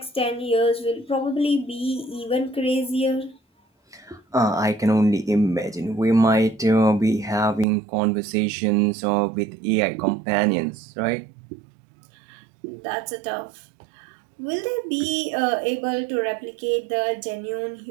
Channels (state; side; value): drops out; left; at 7.7 s